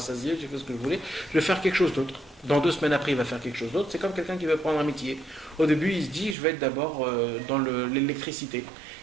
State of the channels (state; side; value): drops out; left; at 6.4 s